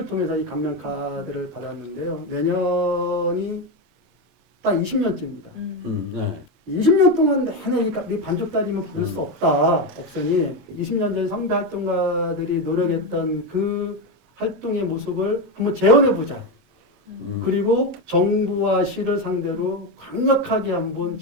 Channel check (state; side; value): late; left; 27 ms